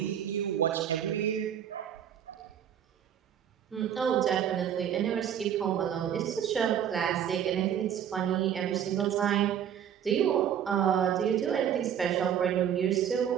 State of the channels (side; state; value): left; quieter; 9.3 dB